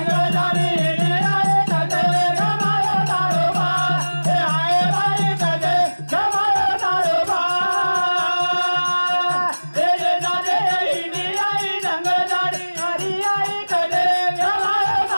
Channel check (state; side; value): inverted; both; correlation -1.00